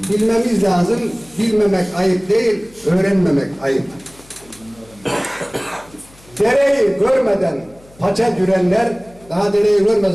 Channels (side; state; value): left; noise; hum, 26 dB below the sound